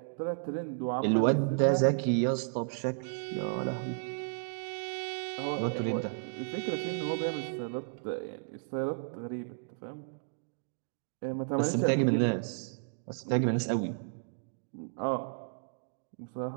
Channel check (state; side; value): silent; left; digital silence